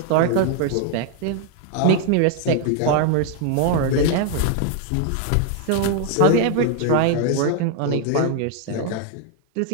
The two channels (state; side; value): different; both; correlation 0.00